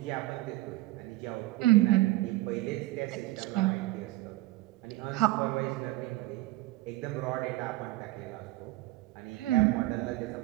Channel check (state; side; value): quieter; left; 18.3 dB